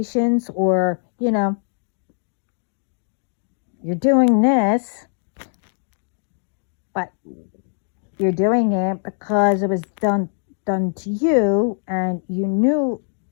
or, you're doing this, but you're doing it because it was done to you, and you knew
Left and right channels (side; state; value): right; silent; digital silence